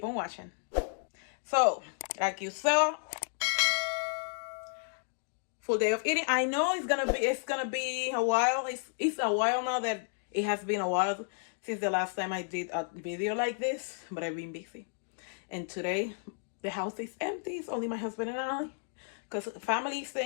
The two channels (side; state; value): right; silent; digital silence